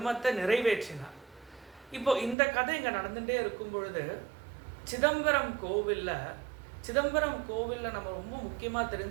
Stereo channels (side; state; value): left; drops out; at 2.4 s